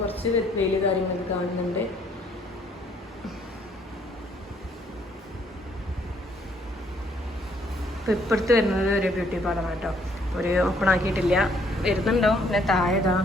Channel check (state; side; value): normal; both; correlation 0.66